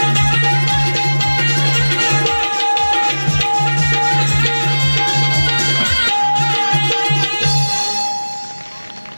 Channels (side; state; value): both; inverted; correlation -1.00